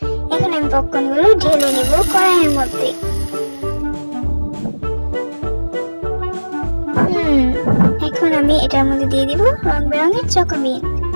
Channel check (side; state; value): both; inverted; correlation -1.00